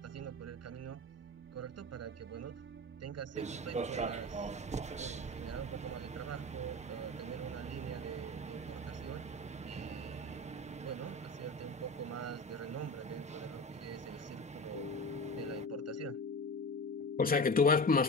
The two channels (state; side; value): normal; both; correlation 0.30